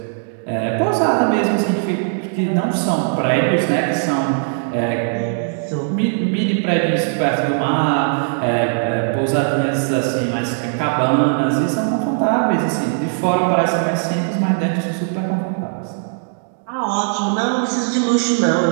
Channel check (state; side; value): silent; left; digital silence